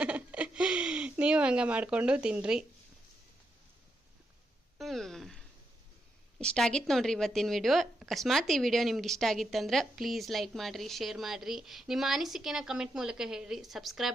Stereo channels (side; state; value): both; normal; correlation 0.82